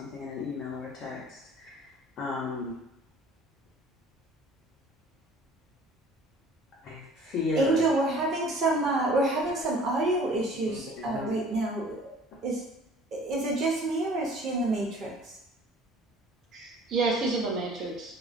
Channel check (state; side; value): normal; both; correlation 0.50